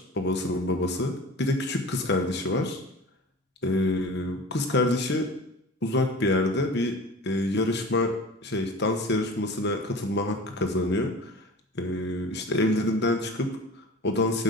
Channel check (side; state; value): both; normal; correlation 0.38